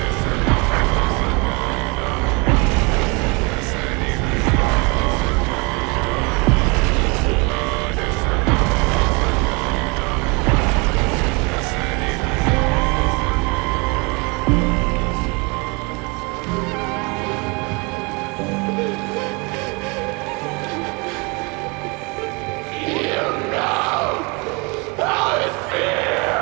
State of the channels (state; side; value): quieter; left; 29.5 dB